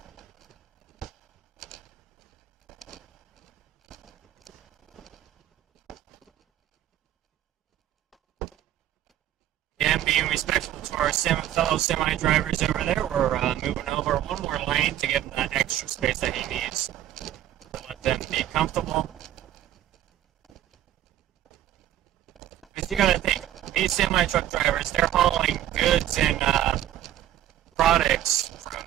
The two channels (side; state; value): left; quieter; 12.3 dB